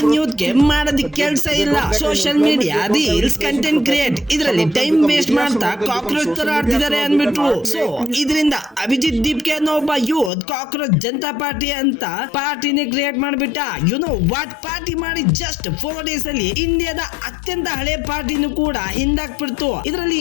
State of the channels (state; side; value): drops out; right; at 10.3 s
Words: ಯೂತ್ ಗೆ ಮಾಡೋದಕ್ಕೆ ಕೆಲಸ ಇಲ್ಲ, social media reels content create ಇದರಲ್ಲಿ ಟೈಮ್ ವೇಸ್ಟ್ ಮಾಡ್ತಾ ಕಾಕ್ರೋಚ್ ತರ ಆಡ್ತಿದ್ದಾರೆ ಅಂದ್ಬಿಟ್ರು. ಸೊ ಇದರಿಂದ ಅಭಿಜಿತ್ ದೀಪ್ಗೆ ಅನ್ನೋ ಒಬ್ಬ ಯೂತ್ ಕಾಕ್ರೋಚ್ ಜನತಾ ಪಾರ್ಟಿ ಅಂತ ಪಾರ್ಟಿನೇ ಕ್ರಿಯೇಟ್ ಮಾಡ್ಬಿಟ್ಟ. You know what? ಪಾರ್ಟಿ ಮಾಡಿ ಜಸ್ಟ್ 4 days ಅಲ್ಲಿ ಇಂಡಿಯಾದ ಅತ್ಯಂತ ಹಳೆ ಪಾರ್ಟಿನೂ ಕೂಡ ಹಿಂದಾಕ್ಬಿಡ್ತು. ಇದರಲ್ಲಿ